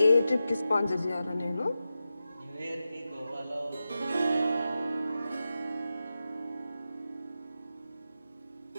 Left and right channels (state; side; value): inverted; both; correlation -0.91